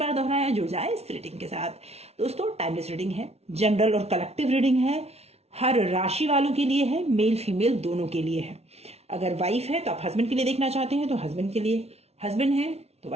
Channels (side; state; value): left; late; 0.31 ms